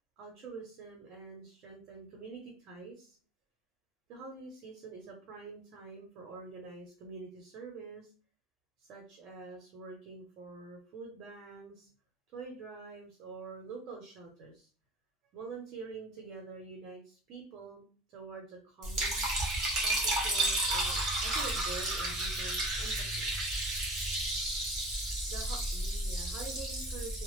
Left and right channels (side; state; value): both; normal; correlation 0.41